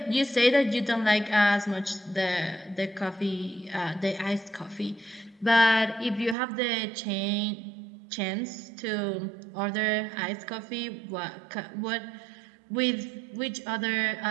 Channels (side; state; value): left; drops out; at 6.4 s